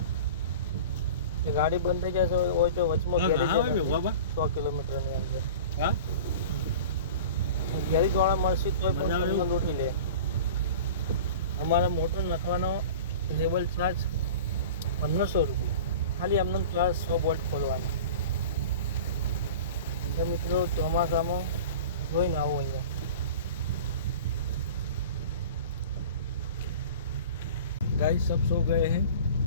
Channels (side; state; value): both; inverted; correlation -0.38